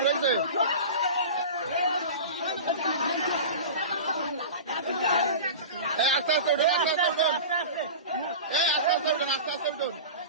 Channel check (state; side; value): inverted; both; correlation -0.32